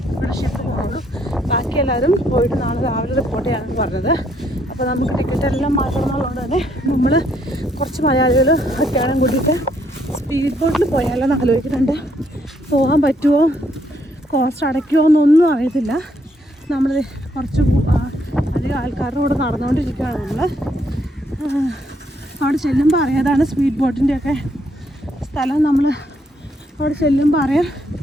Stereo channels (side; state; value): both; normal; correlation 0.71